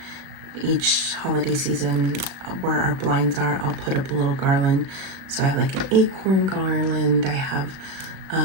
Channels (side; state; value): left; late; 36 ms